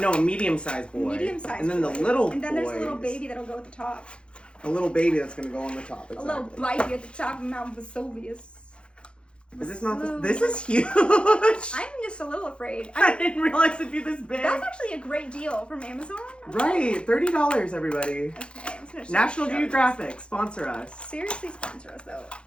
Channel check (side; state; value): right; late; 0.056 ms